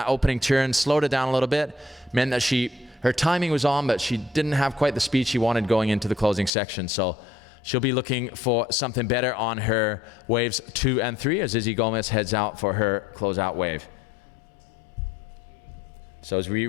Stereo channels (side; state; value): right; drops out; at 6.5 s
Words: opening turn, slowed it down a little bit, meant that her timing was on, but she didn't have quite the speed she wanted going into the closing section. So she'll be looking for something better on her waves 2 and 3 as Izzy Gomez heads out for her closeout wave. So as we